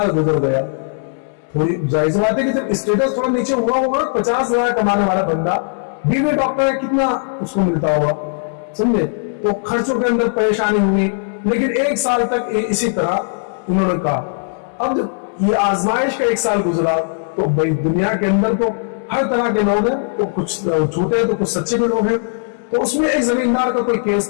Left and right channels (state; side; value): silent; right; digital silence